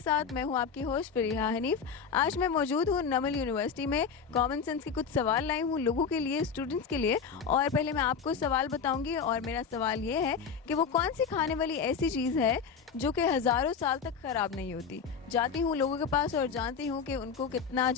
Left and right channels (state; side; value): quieter; right; 6.2 dB